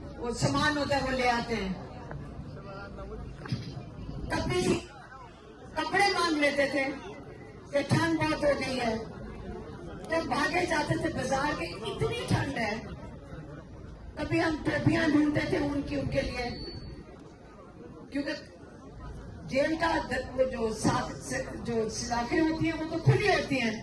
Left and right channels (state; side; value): identical; both; correlation 1.00